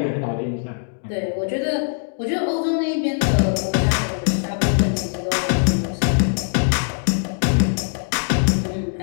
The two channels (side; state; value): right; silent; digital silence